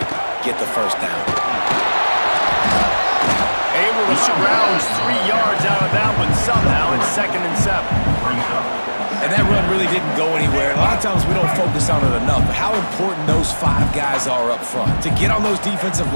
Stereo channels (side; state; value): both; inverted; correlation -1.00